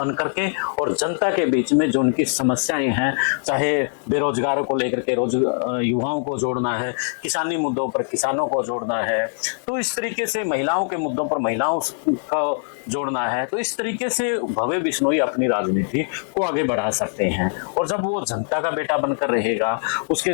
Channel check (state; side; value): silent; right; 64 dB below the other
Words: करके और जनता के बीच में जो उनकी समस्याएं हैं, चाहे बेरोजगारों को लेकर के युवाओं को जोड़ना है, किसानी मुद्दों पर किसानों को जोड़ना है, तो इस तरीके से महिलाओं के मुद्दों पर महिलाओं को जोड़ना है, तो इस तरीके से भव्य बिश्नोई अपनी राजनीति को आगे बढ़ा सकते हैं। और जब वो जनता का बेटा बनकर रहेगा, उसके